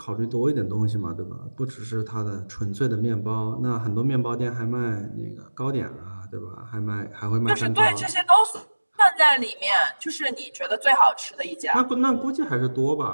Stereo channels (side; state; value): both; inverted; correlation -1.00